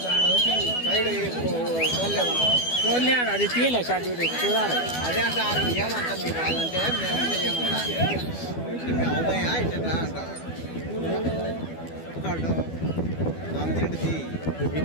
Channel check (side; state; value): right; late; 12 ms